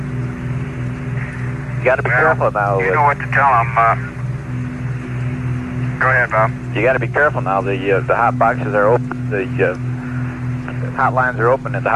You got to be careful now. You know what to tell them. Go ahead, Bob. You got to be careful now. The hot boxes are open. The hotlines are open at the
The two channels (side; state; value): both; identical; correlation 1.00